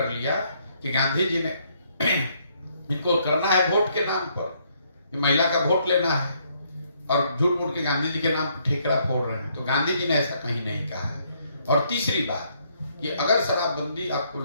लिया कि गांधी जी ने इनको करना है वोट के नाम पर, महिला का वोट लेना है और झूठ मूठ के गांधी जी के नाम पर ठेकरा फोड़ रहे हैं। तो गांधी जी ने ऐसा कहीं नहीं कहा है। और तीसरी बात कि अगर शराबबंदी आपको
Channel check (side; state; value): both; inverted; correlation -0.70